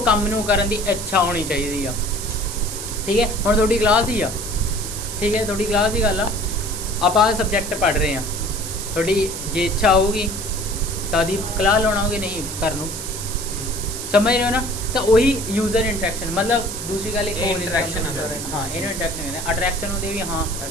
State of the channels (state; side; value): noise; right; hiss, 7 dB below the sound